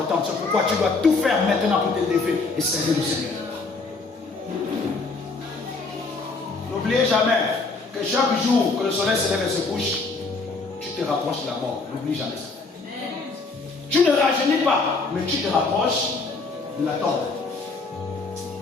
C'est pourquoi tu dois tout faire maintenant pour te lever et servir le Seigneur. N'oubliez jamais que chaque jour que le soleil se lève et se couche, tu te rapproches de la mort. N'oublie jamais ça. Tu ne rajeunis pas, mais tu te rapproches de la tombe.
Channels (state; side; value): quieter; right; 3.9 dB